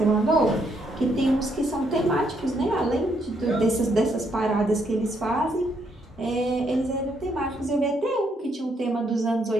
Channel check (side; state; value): both; normal; correlation 0.74